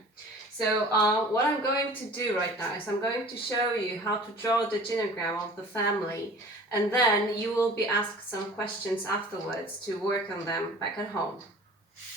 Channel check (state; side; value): normal; both; correlation 0.45